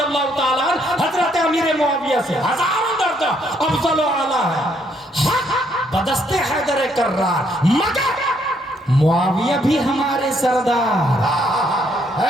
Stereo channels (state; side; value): normal; both; correlation 0.70